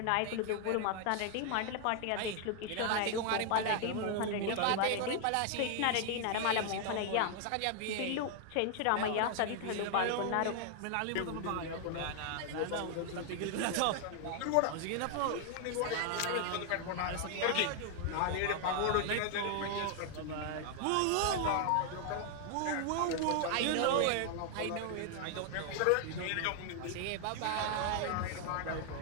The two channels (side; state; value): both; different; correlation 0.00